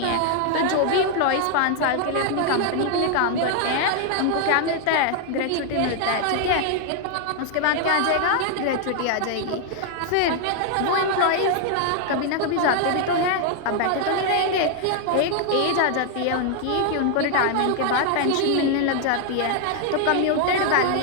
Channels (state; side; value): different; both; correlation 0.00